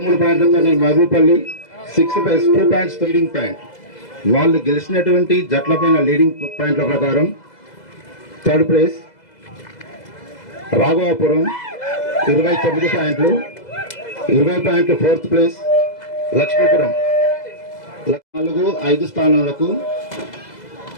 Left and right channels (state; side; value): late; right; 2.0 ms